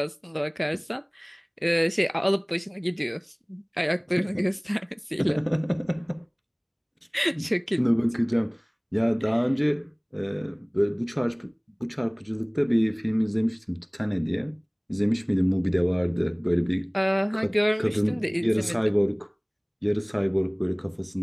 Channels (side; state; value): both; identical; correlation 1.00